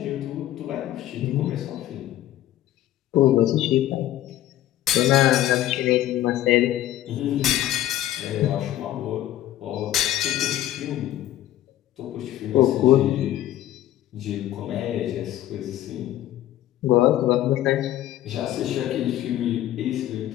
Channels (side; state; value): right; quieter; 13.6 dB